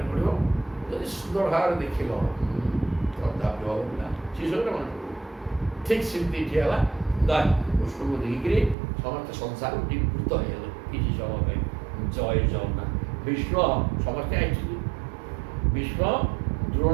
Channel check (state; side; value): drops out; left; at 8.8 s